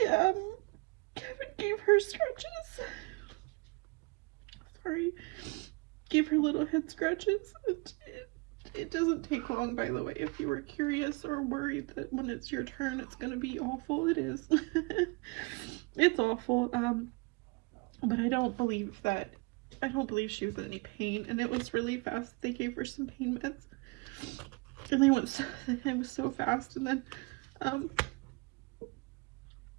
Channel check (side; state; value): left; quieter; 27.9 dB